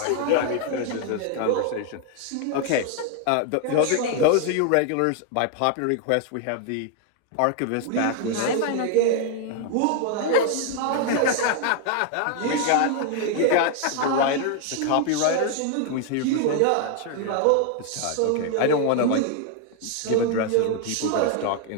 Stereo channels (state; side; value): different; both; correlation 0.00